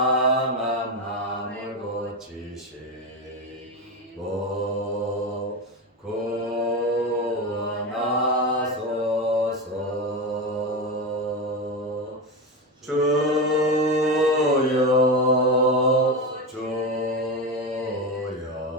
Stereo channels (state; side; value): normal; both; correlation 0.17